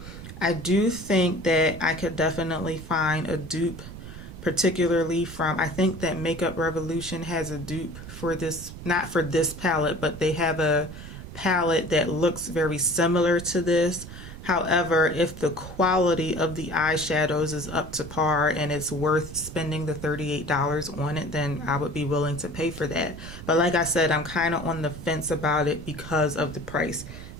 I do think that I could definitely find a dupe, particularly from, I think that Makeup Revolution has a dupe for this, not for this palette, but they have a palette that looks very similar to this. However, if the quality of the eyeshadows is up to par and it's worth spending the $38 on it, then I would be willing to pay for that. But like I said, I'm kind of on the fence about it because of the price.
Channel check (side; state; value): right; noise; rumble, 12 dB below the sound